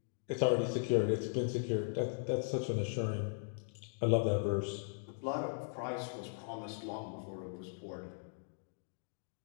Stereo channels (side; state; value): right; silent; digital silence